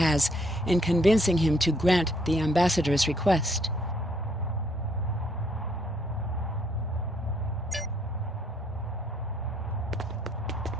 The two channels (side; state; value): both; normal; correlation 0.68